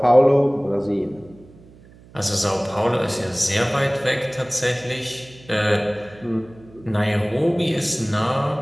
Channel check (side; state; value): right; noise; hum, 24 dB below the sound